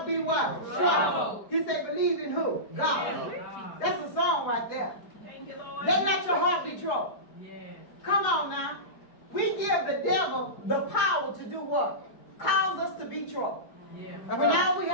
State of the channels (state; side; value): late; right; 4.8 ms